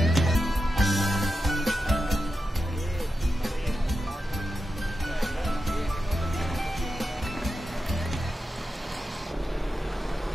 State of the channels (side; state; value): both; normal; correlation 0.90